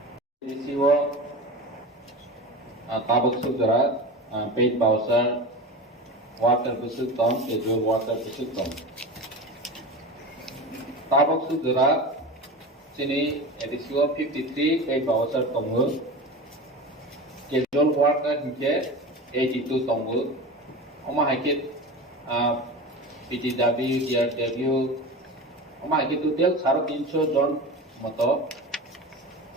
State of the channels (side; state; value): both; normal; correlation 0.29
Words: Tabak Sudra, paid Bowser, water Busuk Tom, casual water Busuk Tom. Tabak Sudra, Sini, A.D.C 53, paid Bowser Tongu, casual water Hike, 82 Tongu, Oma Hikit, PTW, DRW, Oma Hikit to tell Saro Pincho John Moto,